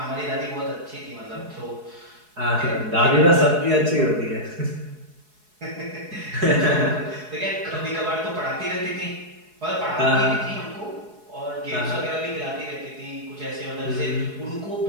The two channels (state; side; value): late; left; 4.7 ms